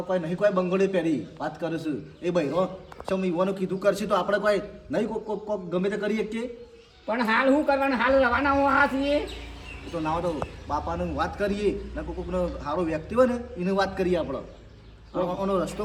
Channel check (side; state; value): both; identical; correlation 1.00